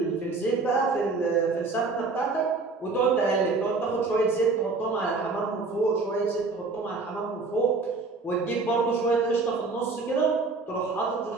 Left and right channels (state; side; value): quieter; left; 4.0 dB